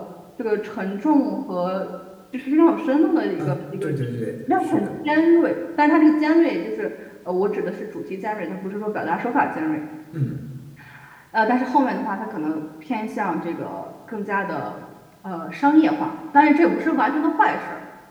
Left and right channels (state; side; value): identical; both; correlation 1.00